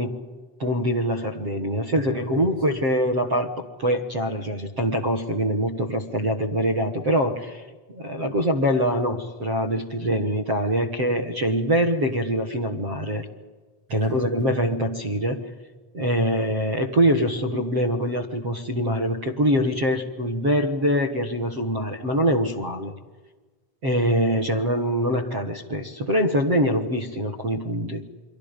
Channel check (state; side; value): late; left; 7.6 ms